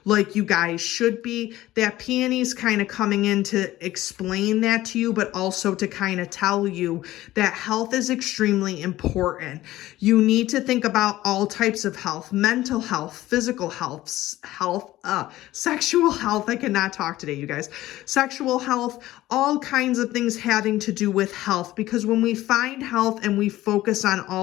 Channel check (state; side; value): quieter; right; 15.8 dB